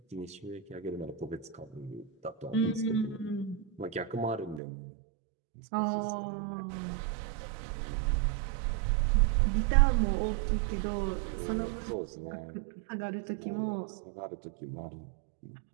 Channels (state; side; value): drops out; left; at 4.6 s